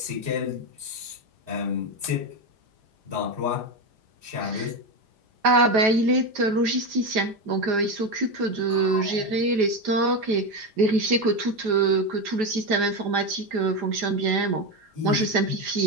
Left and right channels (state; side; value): late; left; 5.0 ms